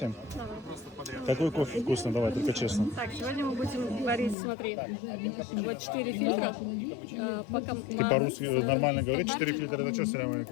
Какой кофе вкусный, давай, только честно. Так, сегодня мы будем варить, смотри, вот 4 фильтра. Ты по-русски нормально говоришь? 4 фильтра, это что, салям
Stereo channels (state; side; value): drops out; right; at 4.4 s